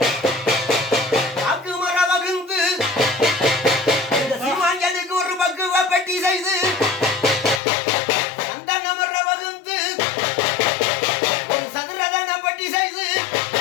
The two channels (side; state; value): right; drops out; at 7.6 s